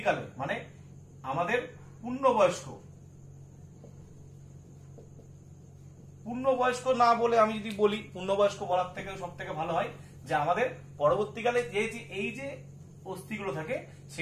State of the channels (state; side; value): identical; both; correlation 1.00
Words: মানে আমাদের পূর্ণবয়স্ক না বলে আমি যদি বলি, পূর্ণবয়স্ক বলার থেকে সব থেকে ভালো হয় যে আমাদের পরবর্তীকালে এই যে অস্থিগুলো থাকে